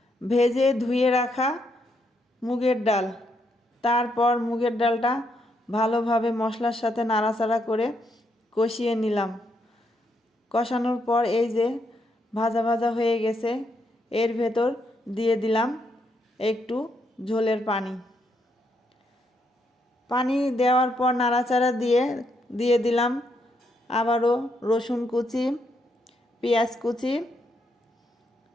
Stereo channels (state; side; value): normal; both; correlation 0.77